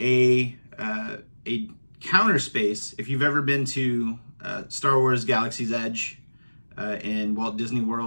counter space. If you've ever been to Star Wars Galaxy's Edge in Walt Disney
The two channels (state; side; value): inverted; both; correlation -1.00